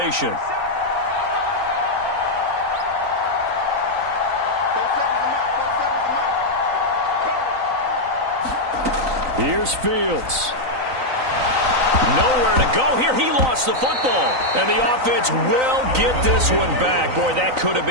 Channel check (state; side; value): late; left; 3.9 ms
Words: Here's Fields. Nowhere to go here. He lost the football. And the offense will get this one back. Boy, that could have